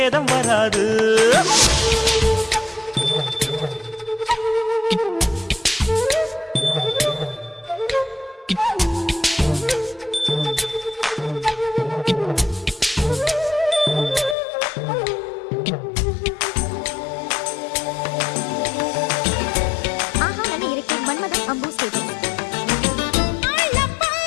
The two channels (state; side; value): drops out; right; at 14.4 s